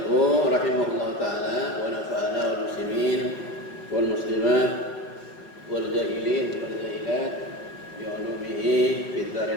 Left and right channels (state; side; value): late; right; 5.5 ms